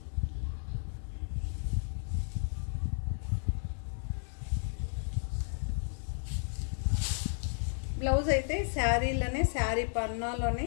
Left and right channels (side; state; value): right; silent; 56 dB below the other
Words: బ్లౌజ్ అయితే శారీలోనే, శారీ పన్నాలోనే